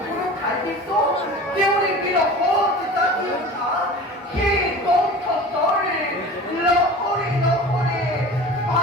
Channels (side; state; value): both; normal; correlation 0.38